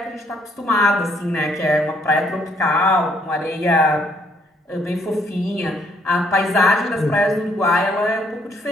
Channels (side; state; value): both; normal; correlation 0.68